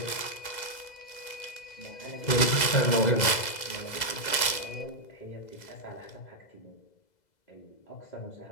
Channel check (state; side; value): late; right; 2.0 ms